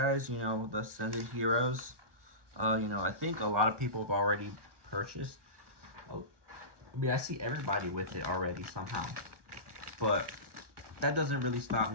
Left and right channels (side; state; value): left; late; 1.2 ms